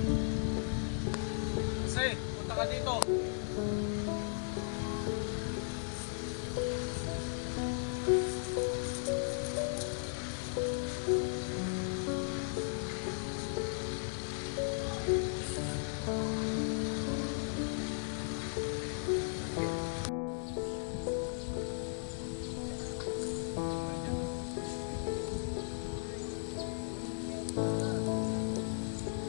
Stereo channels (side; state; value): right; silent; digital silence